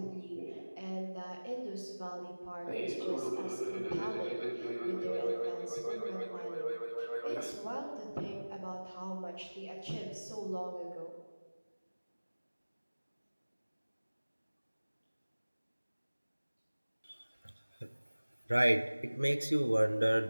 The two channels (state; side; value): inverted; both; correlation -1.00